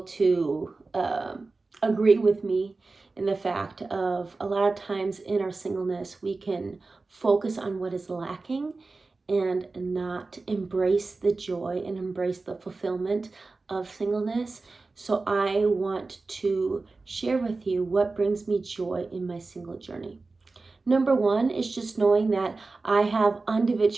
agree with me in the fact of a lot of times in our singleness, we can focus on what is lacking and not embrace the joy and embrace the fulfillment of singleness. So I want to share with you what brings me joy in my single journey. Number one is just knowing that I have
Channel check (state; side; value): quieter; left; 3.7 dB